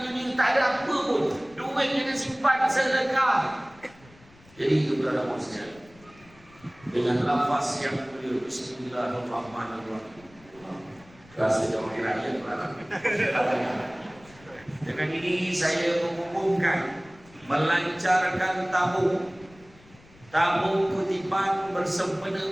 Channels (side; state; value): left; noise; rumble, 25 dB below the sound